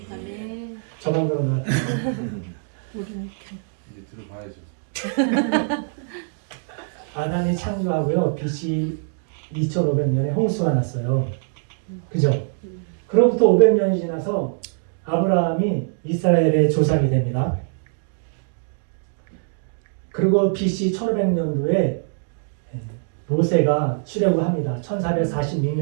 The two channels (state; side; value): silent; left; digital silence